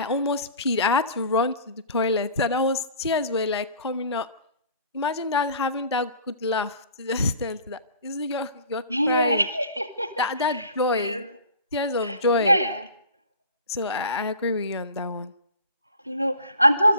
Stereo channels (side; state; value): both; inverted; correlation -0.45